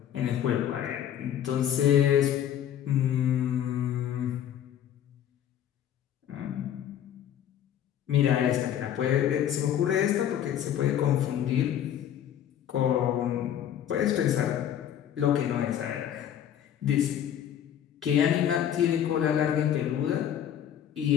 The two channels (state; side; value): quieter; right; 10.2 dB